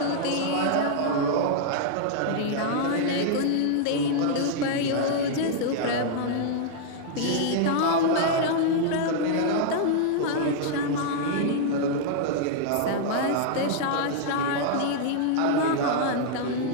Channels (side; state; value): both; different; correlation -0.01